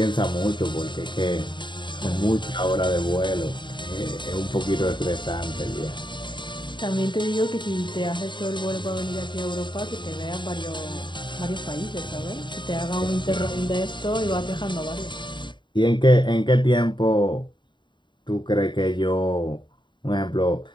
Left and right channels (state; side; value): late; right; 0.23 ms